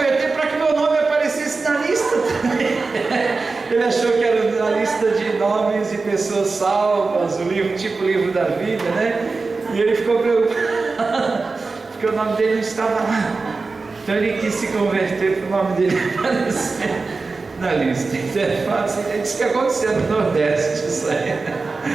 para que meu nome aparecesse na lista também. Ele achou que era na lista de nomes de pessoas salvas, o livro, tipo o livro da vida, né? E ele ficou preocupado, porque o nome dele não estava lá. Então ele quis se converter para o nome dele aparecer na lista. Então é fácil, é isso que aconteceu no Nordeste, isso aí.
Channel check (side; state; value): left; quieter; 4.0 dB